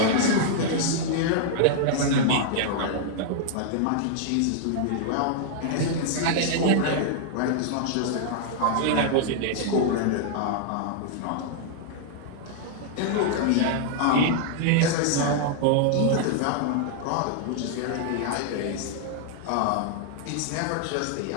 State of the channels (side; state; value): both; different; correlation -0.01